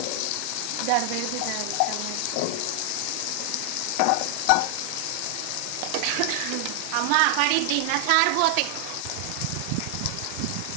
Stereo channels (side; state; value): both; different; correlation 0.00